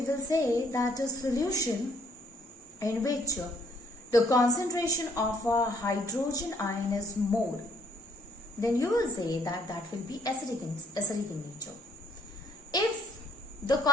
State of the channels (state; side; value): normal; both; correlation 0.66